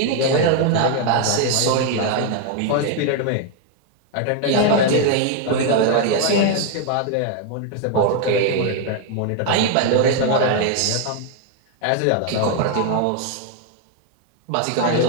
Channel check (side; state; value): both; different; correlation 0.01